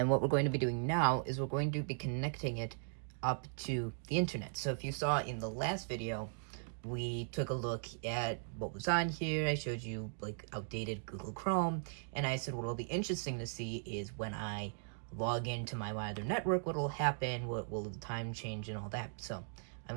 what we're going to be doing now is we're going to be connecting it up to the internet. So if you saw in the last video, we took a look at what was on here. I showed you like outdated Google Chrome, and I said what will be interesting to see is when I log into my wider network, what will happen, what will the time change and all that. So I'm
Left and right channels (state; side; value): silent; left; digital silence